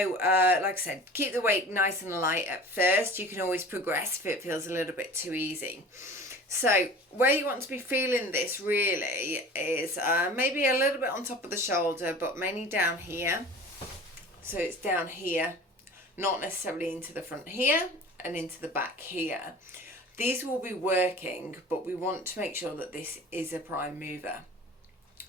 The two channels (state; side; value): normal; both; correlation 0.40